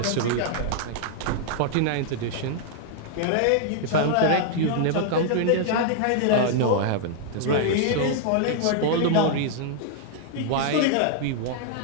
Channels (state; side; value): different; both; correlation 0.00